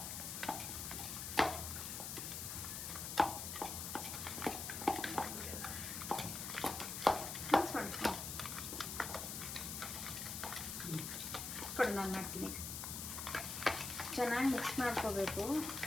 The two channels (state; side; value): noise; left; hiss, 5 dB below the sound